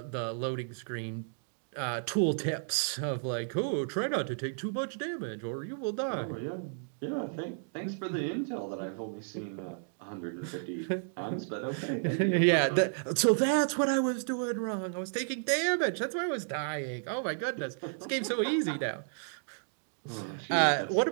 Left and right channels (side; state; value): left; silent; digital silence